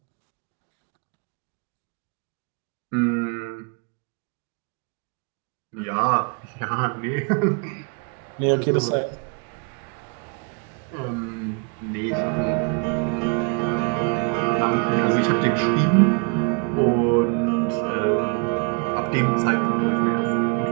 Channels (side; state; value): left; quieter; 33.6 dB